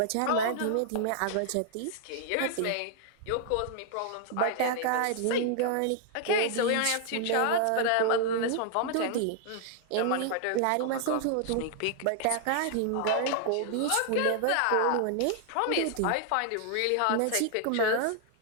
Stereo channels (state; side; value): different; both; correlation -0.01